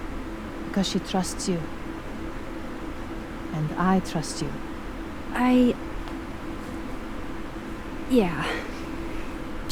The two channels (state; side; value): identical; both; correlation 1.00